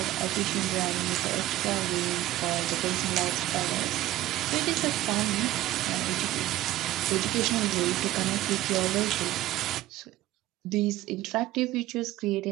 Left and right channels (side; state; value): left; quieter; 15.6 dB